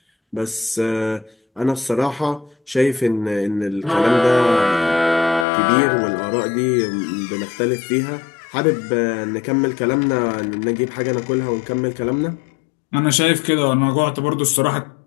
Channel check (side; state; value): right; drops out; at 5.5 s